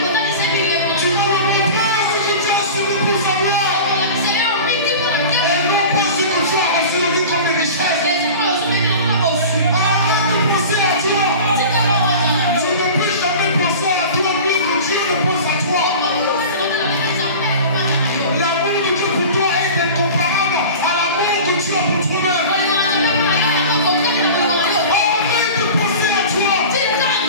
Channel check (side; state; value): both; inverted; correlation -0.35